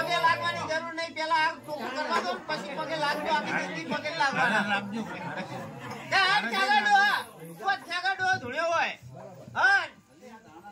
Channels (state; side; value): identical; both; correlation 1.00